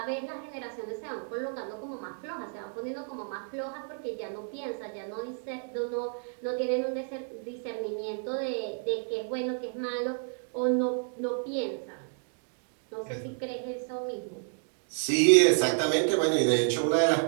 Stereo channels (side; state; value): left; silent; 57 dB below the other